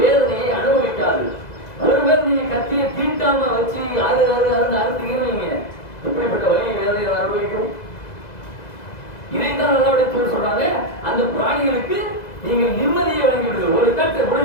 அனுபவிக்காது. ஒருவர் நீங்க கத்தியை தீட்டாம வச்சு அறுத்தீங்கன்னு வைங்க, எப்படிப்பட்ட வழி வேதனையை அனுபவிக்கும். இதைத்தான் நல்லபடியாக சொல்றாங்க, அந்த பிராணிகளுக்கு நீங்கள் நிம்மதியை வழங்கிவிடுங்கள். ஒரு கட்டை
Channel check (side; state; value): right; late; 2.0 ms